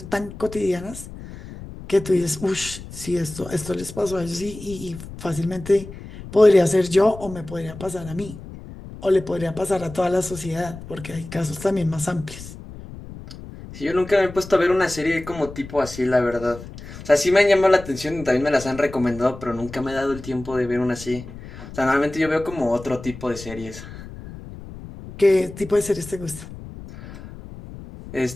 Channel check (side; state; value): left; noise; rumble, 14 dB below the sound